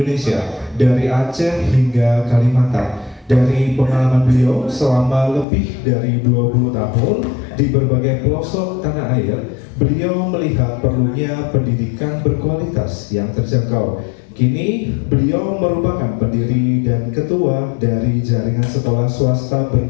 dari Aceh hingga Kalimantan. Dari pengalaman beliau selama lebih dari 20 tahun di berbagai pelosok tanah air, beliau melihat perlunya pendidikan berkualitas yang terjangkau. Kini beliau merupakan pendiri dan ketua dari jaringan sekolah swasta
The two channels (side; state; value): right; drops out; at 5.5 s